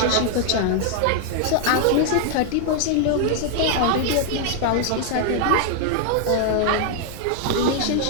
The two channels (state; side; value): different; both; correlation 0.00